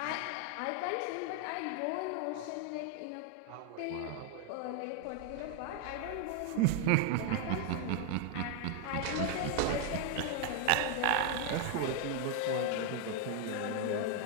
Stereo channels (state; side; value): different; both; correlation 0.01